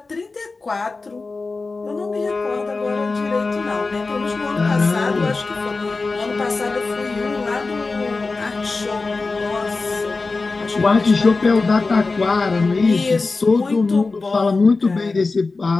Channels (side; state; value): right; quieter; 3.8 dB